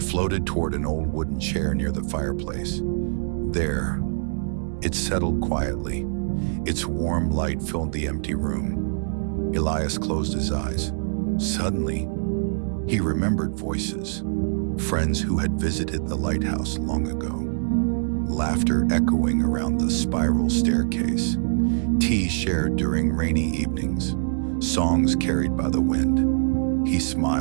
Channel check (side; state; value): left; silent; 62 dB below the other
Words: floated toward an old wooden chair near the fireplace. There, it settled quietly. Its warm light filled the empty room. Elias closed his eyes. Suddenly, he remembered voices, friends who had visited the lighthouse long ago. Laughter echoing around the spiral staircase, tea shared during rainy evenings, songs carried by the wind. He